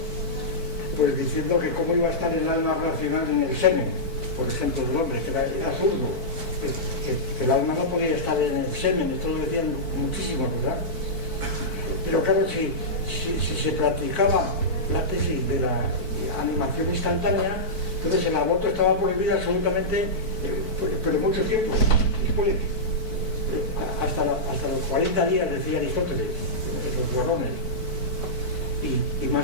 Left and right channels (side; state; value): right; late; 4.5 ms